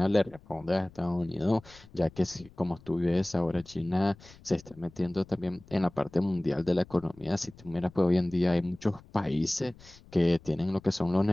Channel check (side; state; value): left; noise; rumble, 23 dB below the sound